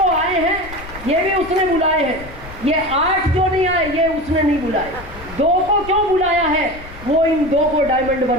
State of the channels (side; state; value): left; noise; rumble, 16 dB below the sound